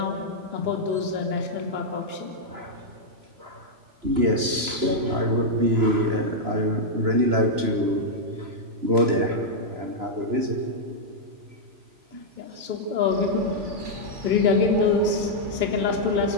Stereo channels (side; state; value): left; late; 3.0 ms